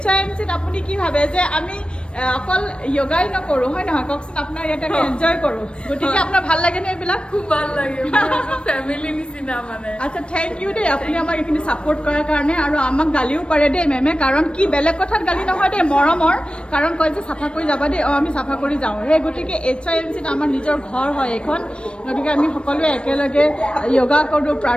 HYMCত আপুনি কি ভাবে যে আমি অকল যোগাই নকৰোঁ, হয় নহয় কওকচোন? আপোনাৰ ইয়াতে আমি এনজয় কৰোঁ, গতিকে আপোনাৰ ভাল লাগেনে এইবিলাক? খুব ভাল লাগে, ফেমিলি নিচিনা মানে। আচ্ছা, থেংক ইউ দেই আপুনি আমাক এইখিনি ছাপোৰ্ট কৰাৰ কাৰণে। আৰু আমাক গালিও পাৰে দেই মেমে, কাৰণ কি বেলেগ কথাত গালি নহয় দেই, মৰমৰ কাৰণ কয় যে চাফা কৰি যাবা দেই। আমি চাফা কৰি যাওঁ। সেই গতিকে HYMCত আমাৰ নিজৰ ঘৰ হয় এইখন, গতিকে আমি সকলোৱে একেলগে যোগা কৰোঁ,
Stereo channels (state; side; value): late; right; 0.057 ms